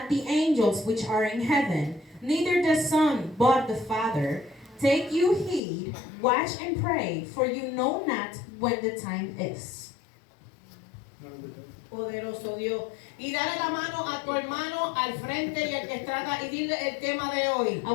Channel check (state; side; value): drops out; right; at 5.6 s